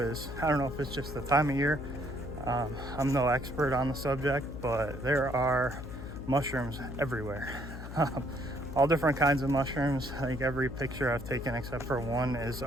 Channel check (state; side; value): noise; left; hum, 10 dB below the sound